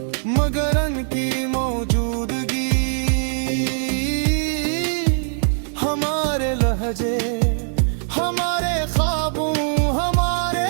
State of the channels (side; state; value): left; silent; 65 dB below the other